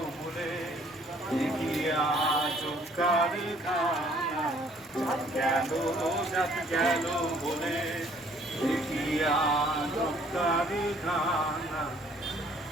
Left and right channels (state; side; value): normal; both; correlation 0.60